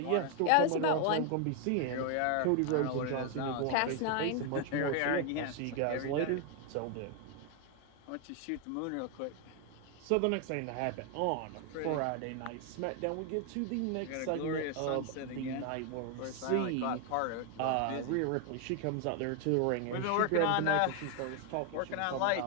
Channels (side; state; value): both; different; correlation 0.00